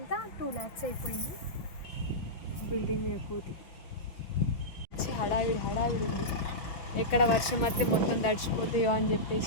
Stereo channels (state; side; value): late; right; 6.0 ms